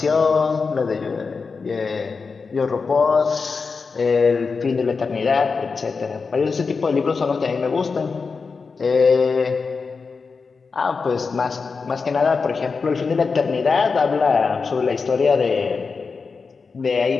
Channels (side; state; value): right; quieter; 4.8 dB